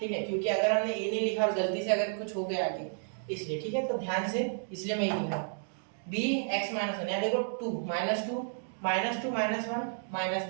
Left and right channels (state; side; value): silent; left; digital silence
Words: है, क्योंकि अगर हमने a नहीं लिखा और गलती से अगर कुछ हो गया आगे, इसलिए, ठीक है। तो ध्यान से, इसलिए मैं ये लिख रहा हूँ b x माइनस वन, यहाँ देखो 2 -2 -1